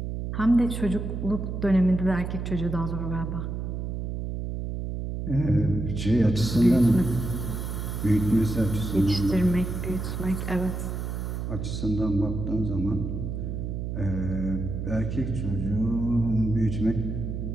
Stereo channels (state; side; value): noise; right; hum, 4 dB below the sound